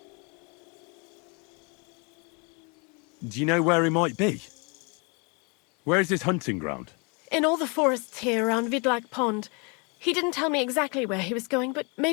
Do you know where he might be? Where is his hunting ground? In all the forests here around Vidlak Pond. He didn't tell me exactly where he was going, but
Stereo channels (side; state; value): right; quieter; 32.4 dB